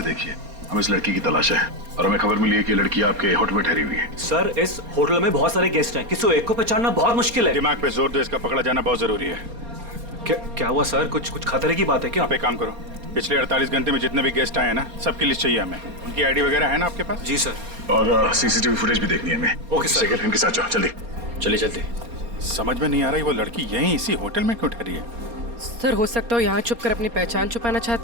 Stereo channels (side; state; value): left; late; 4.3 ms